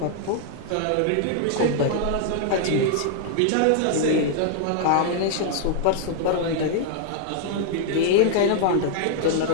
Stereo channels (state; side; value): different; both; correlation -0.01